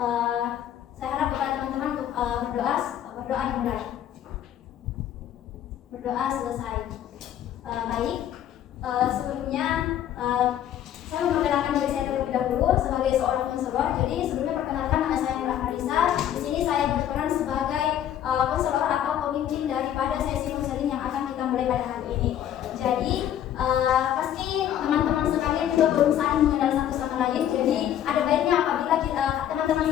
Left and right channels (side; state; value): right; quieter; 10.9 dB